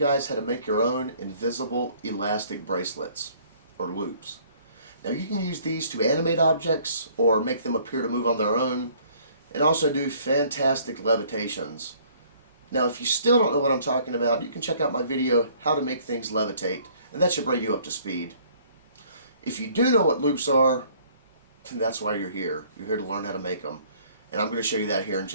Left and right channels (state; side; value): inverted; both; correlation -0.58